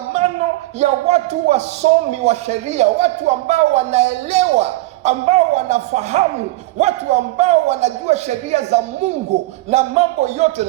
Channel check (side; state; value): left; quieter; 19.3 dB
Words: ya watu wasomi wa sheria, watu ambao wanaelewa, ambao wanafahamu, watu ambao wanajua sheria za Mungu na mambo yote.